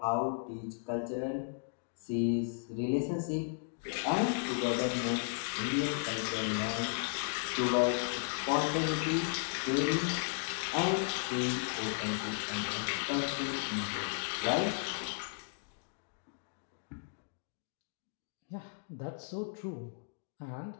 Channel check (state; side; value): silent; right; digital silence